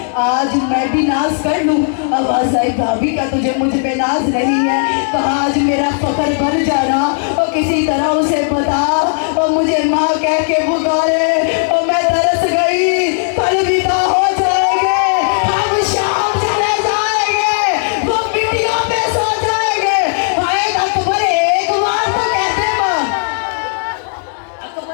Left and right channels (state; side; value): silent; right; digital silence